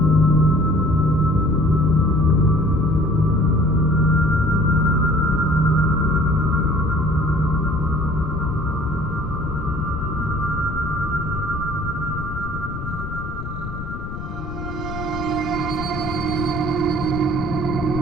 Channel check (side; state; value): left; noise; rumble, 8 dB below the sound